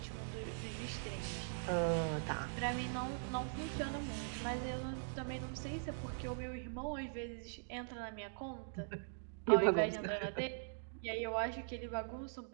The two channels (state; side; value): silent; left; digital silence